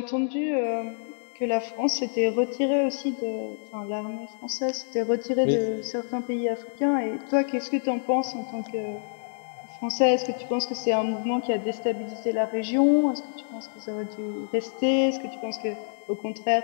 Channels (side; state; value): right; silent; digital silence